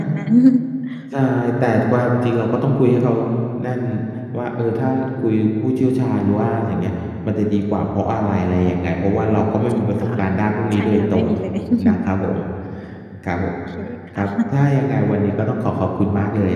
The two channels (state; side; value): identical; both; correlation 1.00